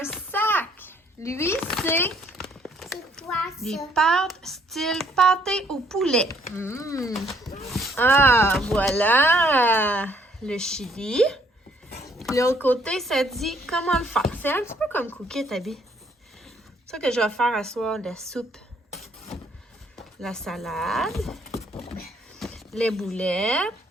sac. Lui, c'est C'est quoi des ça? pâtes style pâté au poulet. Ah, voilà le chili. L'autre côté, ça dit comment le faire. C'est un petit peu comme cookie, Abby. C'est ça que je vais faire à soir, la soupe, la salade, les boulettes,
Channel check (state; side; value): normal; both; correlation 0.65